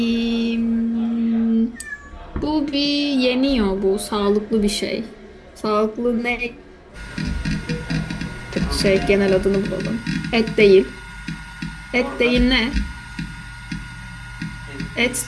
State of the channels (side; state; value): both; identical; correlation 1.00